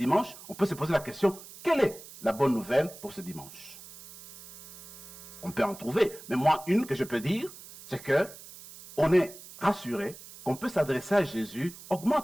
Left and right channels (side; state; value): right; noise; hiss, 17 dB below the sound